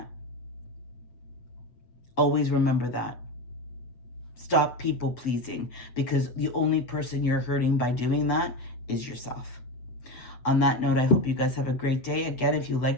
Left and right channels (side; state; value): right; late; 7.9 ms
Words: Always remember that. Stop people pleasing, because the only person you're hurting by doing that is yourself. On that note, I hope you guys have a great day. Again, if you